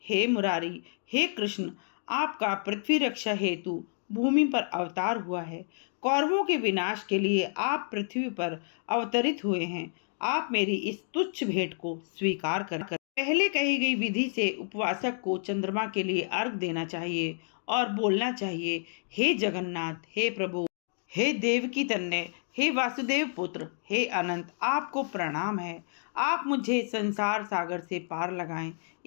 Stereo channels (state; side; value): silent; right; digital silence